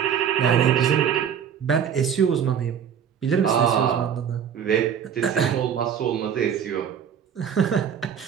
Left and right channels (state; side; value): quieter; left; 8.2 dB